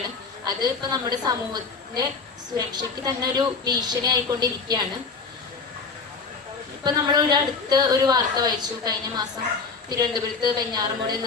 അത് ഇപ്പോൾ നമ്മുടെ സമൂഹത്തിൻ്റെ സുരക്ഷയ്ക്ക് തന്നെ ഒരു ഭീഷണി ആയിക്കൊണ്ടിരിക്കുകയാണ്. ഇപ്പൊ നമ്മൾ അടുത്ത് ഒരു വാർത്ത വായിച്ചു. കഴിഞ്ഞ മാസം തിരുവനന്തപുരത്ത് വെഞ്ഞാറമൂട്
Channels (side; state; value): right; quieter; 4.7 dB